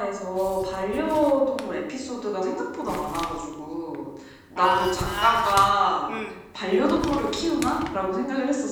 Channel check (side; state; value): both; identical; correlation 1.00